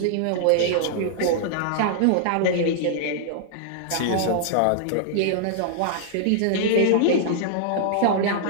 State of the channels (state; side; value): different; both; correlation -0.01